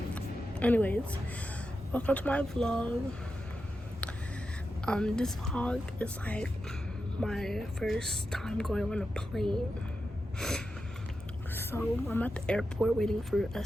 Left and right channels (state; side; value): normal; both; correlation 0.89